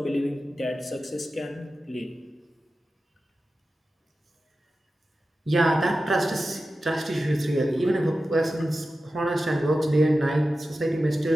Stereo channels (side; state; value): both; normal; correlation 0.93